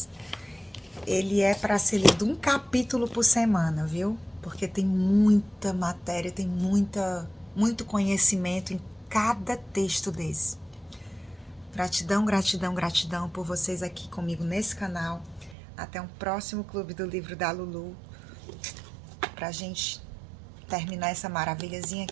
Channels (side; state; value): left; drops out; at 15.6 s